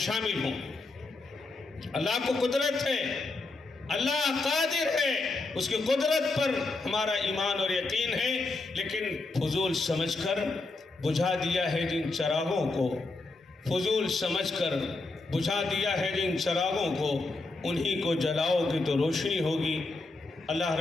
شامل ہوں. اللہ کو قدرت ہے، اللہ قادر ہے، اس کی قدرت پر ہمارا ایمان اور یقین ہے. لیکن فضول سمجھ کر بجھا دیا ہے جن چراغوں کو، جن چراغوں کو، انہی کو جلاؤ گے تو روشنی ہوگی. اللہ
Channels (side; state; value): right; quieter; 3.4 dB